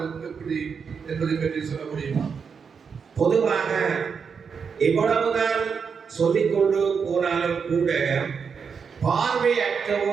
எப்படி என்பதை பற்றி சொல்ல முடியுமா? பொதுவாக எவ்வளவுதான் சொல்லிக்கொண்டு போனாலும் கூட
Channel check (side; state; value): left; quieter; 6.1 dB